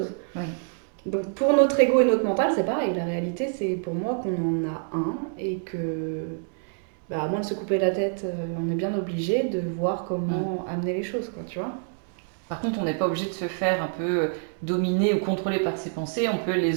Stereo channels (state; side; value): silent; left; digital silence